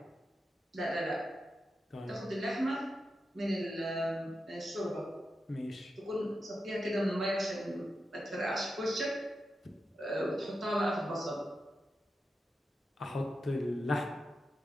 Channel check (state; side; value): normal; both; correlation 0.89